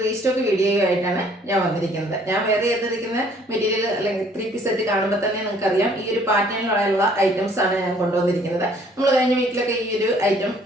റീസ്റ്റോക്ക് വീഡിയോയുമായിട്ടാണ് ഞാൻ വന്നിരിക്കുന്നത്. ഞാൻ വേറെ ചെയ്തിരിക്കുന്ന മെറ്റീരിയൽ അല്ലെങ്കിൽ 3 സെറ്റ് കാണുമ്പോൾ തന്നെ നിങ്ങൾക്കറിയാം ഈ ഒരു പാറ്റേണിലുള്ള ഐറ്റംസ് ആണ് ഞാൻ കൊണ്ടുവന്നിരിക്കുന്നത്. നമ്മൾ കഴിഞ്ഞ വീക്കിലൊക്കെ ഈ ഒരു ഐറ്റം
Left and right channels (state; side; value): normal; both; correlation 0.59